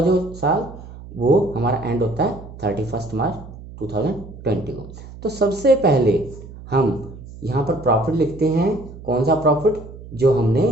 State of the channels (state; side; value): noise; right; hum, 15 dB below the sound